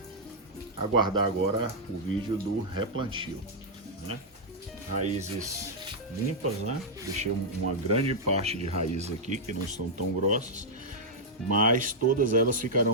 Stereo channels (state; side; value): normal; both; correlation -0.06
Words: aguardar agora o vídeo do replantio, né? Raízes limpas, né? Deixei uma grande parte de raízes aqui que não estão tão grossas, mas todas elas